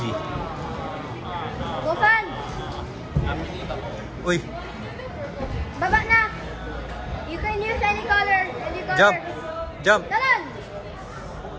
Go, fan. Uy, Baba na. You can use any color. Any color. jump! Jump! Talon.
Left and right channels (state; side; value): identical; both; correlation 1.00